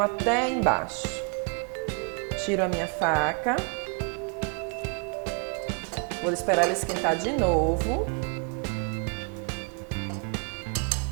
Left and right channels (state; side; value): quieter; left; 38.3 dB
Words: embaixo. Tiro a minha faca. Vou esperar ela esquentar de novo.